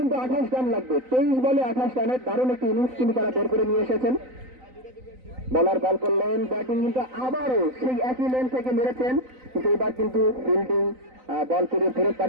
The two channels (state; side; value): late; left; 3.9 ms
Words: কিন্তু 28 রান লাগবে। 23 বলে 28 রানের দারুণ একটি ইনিংস কিন্তু তারা বের করে নিয়ে এসেছেন। বলার বল করলেন, ব্যাটিং কিন্তু আবারও সেই একই লেন থেকে মেরেছেন, কিন্তু এবার কিন্তু ফিল্ডিং বল করে ফেরত